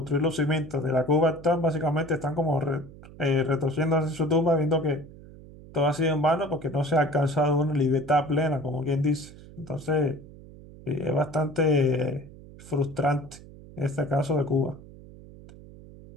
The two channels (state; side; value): noise; right; hum, 19 dB below the sound